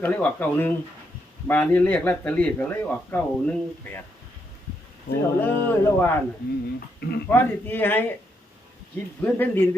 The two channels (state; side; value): normal; both; correlation 0.78